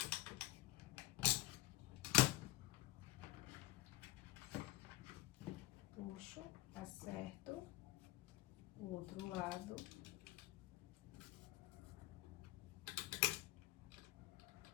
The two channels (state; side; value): quieter; right; 18.3 dB